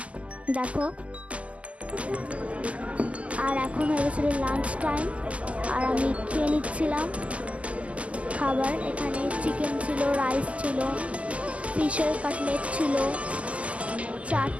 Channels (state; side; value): late; left; 0.064 ms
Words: দেখো। আর এখন হয়ে গেছিলো লাঞ্চ টাইম, আর আমি খেয়ে নিচ্ছিলাম খাবার। এখানে চিকেন ছিল, রাইস ছিল, ফিশের কাটলেট ছিল,